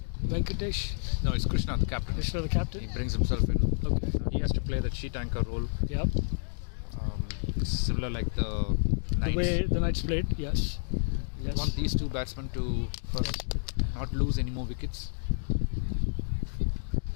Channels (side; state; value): right; silent; digital silence